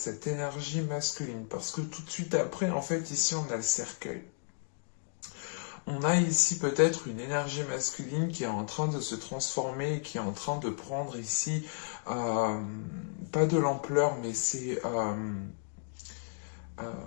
énergie masculine. Parce que tout de suite après, en fait, ici, on a le cercueil. On a ici peut-être une énergie masculine qui est en train de se transformer, qui est en train de prendre ici, pas de l'ampleur, mais c'est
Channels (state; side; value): silent; right; digital silence